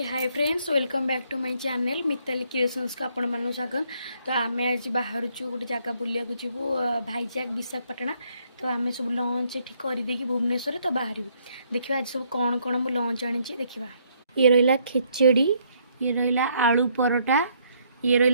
hi friends, welcome back to my channel Mitali Creations को आपण मानू स्वागत। तो आम आज बाहर गोटे जगह बुलिया जीवु भाईजाग विशाखापाटना। तो आम सब लंच ये करदे भुवनेश्वर तो बाहर देखा आज सब कौन कौन मु लंच आनी देखा। ये रहा खिचड़ी, ये रहा आलू परोटा, ये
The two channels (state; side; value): inverted; both; correlation -0.70